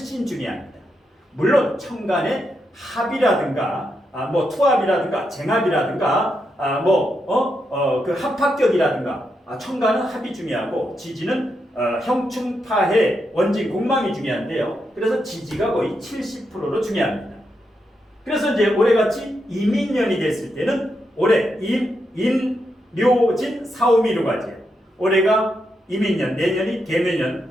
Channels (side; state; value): both; normal; correlation 0.83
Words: 중요합니다. 물론 천간의 합이라든가 투합이라든가 쟁합이라든가 그 합합격이라든가 천간은 합이 중요하고 지지는 형충파해 원진 공망이 중요한데요. 그래서 지지가 거의 70%로 중요합니다. 그래서 이제 올해같이 이민년이 됐을 때는 올해 묘진 사오미로 가죠. 올해가 이민년, 내년이 개묘년,